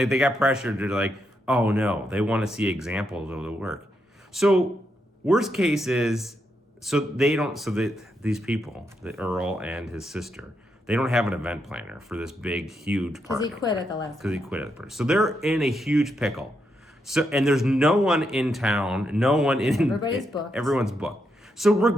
they got pressured to like, oh no, they want to see examples of the work. So worst case is, these people, the Earl and his sister, they don't have an event planner for this big, huge party. Because he quit at the last. Because he quit at the party. So they're in a huge pickle. So, and there's no one in town, no one in... Everybody's booked. Everyone's booked. So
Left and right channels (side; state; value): both; normal; correlation 0.81